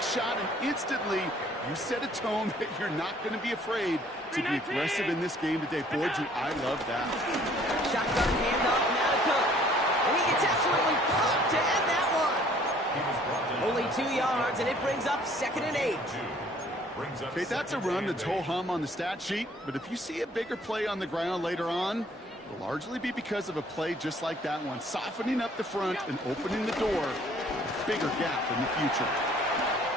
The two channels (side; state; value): both; normal; correlation 0.58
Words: shot, and instantly you set a tone that you're not going to be afraid to be aggressive in this game today. Boy, do I love that. Shotgun handoff now to Cook. And he gets absolutely popped to end that one. Only 2 yards, and it brings up 2nd and 8. Okay, that's a run that's ho-hum on the stat sheet, but if you see a bigger play on the ground later on, it'll largely be because of a play just like that one, softening up the front and opening the door, a bigger gap in the future.